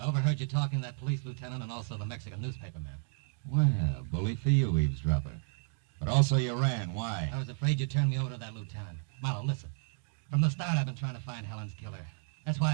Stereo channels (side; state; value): left; silent; 56 dB below the other